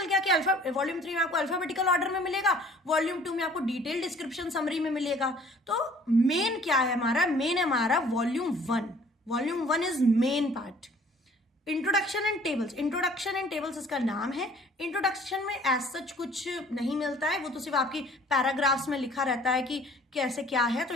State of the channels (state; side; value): normal; both; correlation 0.54